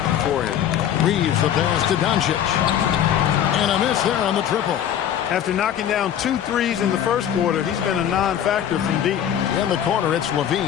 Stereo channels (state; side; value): quieter; right; 9.9 dB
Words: for him. Reeves the pass to Doncic. And a miss there on the triple. After knocking down 2 threes in the first quarter, he's been a non-factor from deep. In the corner, it's